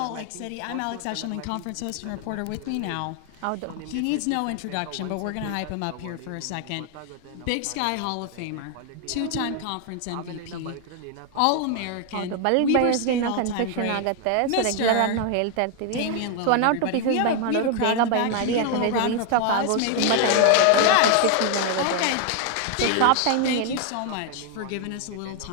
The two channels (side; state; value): both; different; correlation 0.00